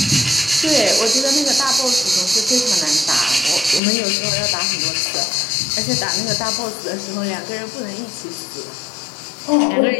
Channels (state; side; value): drops out; right; at 3.8 s